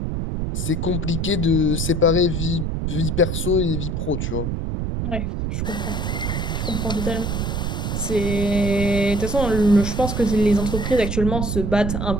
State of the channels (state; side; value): noise; right; rumble, 1 dB below the sound